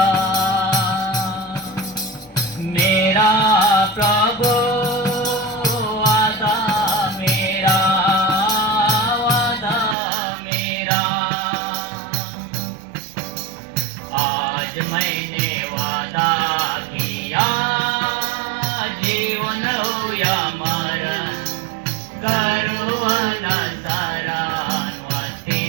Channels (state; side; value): drops out; left; at 10.0 s